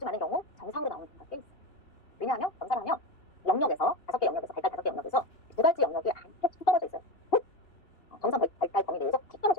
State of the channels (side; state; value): right; late; 2.9 ms